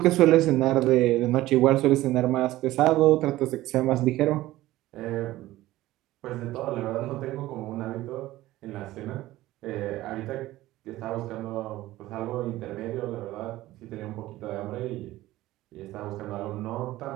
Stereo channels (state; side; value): quieter; left; 16.5 dB